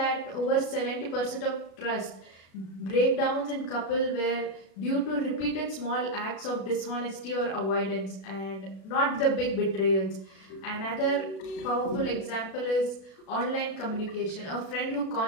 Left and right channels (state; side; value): late; right; 37 ms